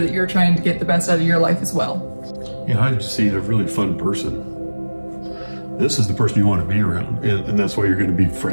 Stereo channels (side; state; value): both; inverted; correlation -1.00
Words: that you're trying to get the best out of your life as well. Yeah, I just see a really fun person. This is the person you want to be around, and that's why you're going to be